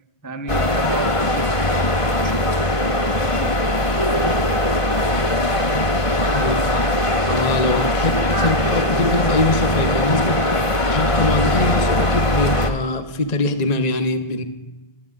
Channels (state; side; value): late; right; 1.5 ms